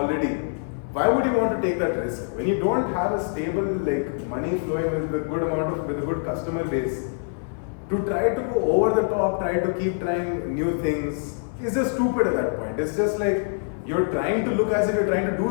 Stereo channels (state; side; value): silent; right; 59 dB below the other